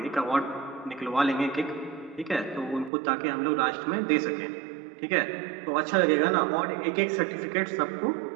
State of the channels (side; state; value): left; drops out; at 2.9 s